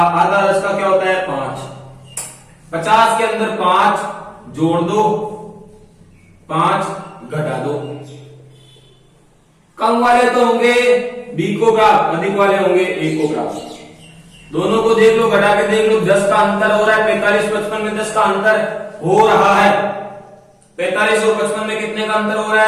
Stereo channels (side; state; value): both; identical; correlation 1.00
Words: 10 का क्या होता है? 5। 50 के अंदर 5 जोड़ दो, 5 घटा दो। कम वाले तो होंगे बी को प्राप्त, अधिक वाले होंगे ए को प्राप्त। दोनों को देख लो, घटा के देख लो, 10 का अंतर हो रहा है। 45 55 में 10 का अंतर हो रहा है। 45 और 55 में कितने का अंतर हो रहा